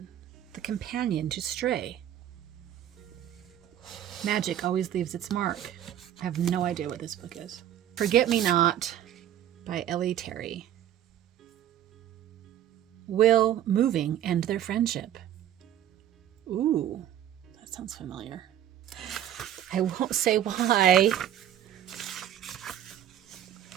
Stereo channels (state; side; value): quieter; left; 11.2 dB